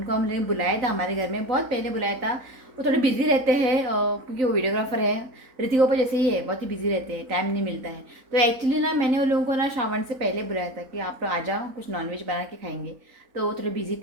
हमने बुलाया था हमारे घर में, बहुत पहले बुलाया था। वो थोड़े बिजी रहते हैं क्योंकि वो वीडियोग्राफर है। ऋतिक पापा जैसे ही है, बहुत ही बिजी रहते हैं, टाइम नहीं मिलता है। तो एक्चुअली ना मैंने उन लोगों को ना श्रावण से पहले बुलाया था कि आप लोग आ जाओ, कुछ नॉनवेज बना के खाएंगे। तो वो थोड़े बिजी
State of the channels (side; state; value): left; late; 3.9 ms